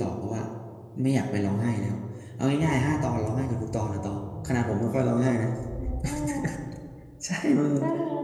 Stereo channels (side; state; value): both; identical; correlation 1.00